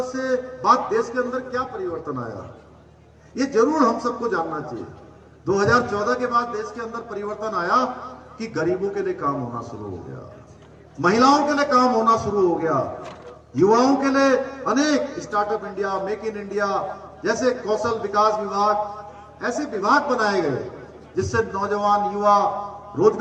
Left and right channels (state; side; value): identical; both; correlation 1.00